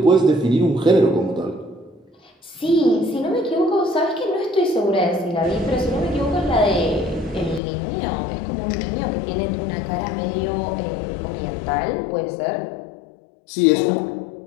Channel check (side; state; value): right; drops out; at 7.6 s